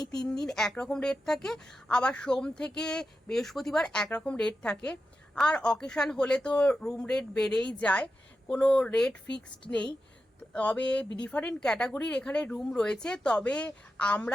3 দিন একরকম রেট থাকে, আবার সোম থেকে বৃহস্পতিবার একরকম রেট থাকে। আর অকেশান হলে তো রুম রেট বেড়েই যায়, কোনো রেট ফিক্সড নেই। তবে ডিফারেন্ট ক্যাটাগরির এখানে রুম রয়েছে। তবে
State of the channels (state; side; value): normal; both; correlation 0.90